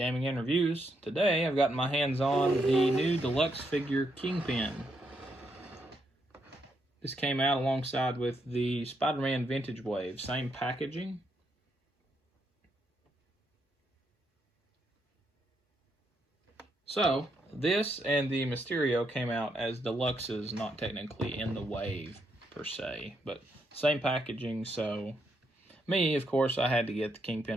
and reviews. Today I've gotten my hands on the new deluxe figure Kingpin. This came out alongside with the Spider-Man Vintage Wave, same packaging. So, this and the Mysterio came out as deluxes, not technically in the wave per se, but same packaging, so me, of course, I had to get the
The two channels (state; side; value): normal; both; correlation 0.78